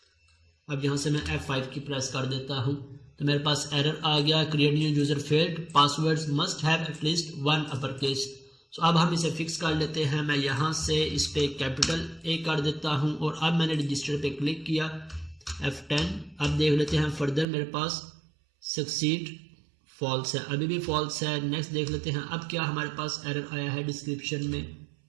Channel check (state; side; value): drops out; left; at 17.4 s